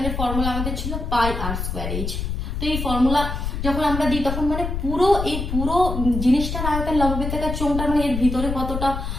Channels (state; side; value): noise; left; rumble, 4 dB below the sound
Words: ফর্মুলা আমাদের ছিল পাই আর স্কোয়ার এইচ। তো এই ফর্মুলা যখন আমরা দিই তখন মানে পুরো জিনিসটার আয়তন, লম্ববৃত্তাকার চোঙটার মানে এর ভিতরে কতটা